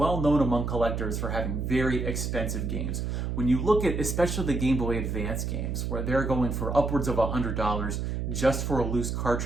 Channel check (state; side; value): noise; right; hum, 2 dB below the sound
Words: known among collectors for having very expensive games. When you look at especially the Game Boy Advance games, where they're going for upwards of $100 just for a loose